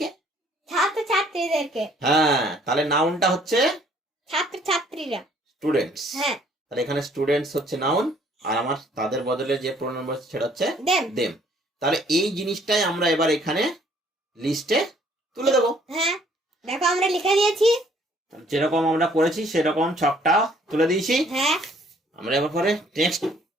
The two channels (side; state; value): both; normal; correlation 0.61